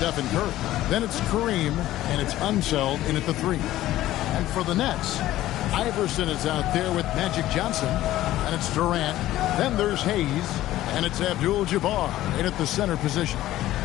Curry. Then it's Kareem, and it's Unseld in at the 3. And for the Nets, Iverson is out there with Magic Johnson, and it's Durant. Then there's Hayes, and it's Abdul-Jabbar in at the center position.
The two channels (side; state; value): right; quieter; 14.7 dB